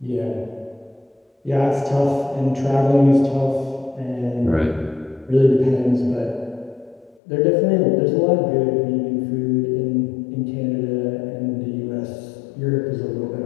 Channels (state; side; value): drops out; right; at 7.2 s